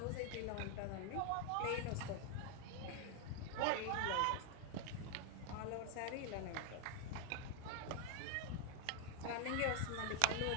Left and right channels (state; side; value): different; both; correlation 0.01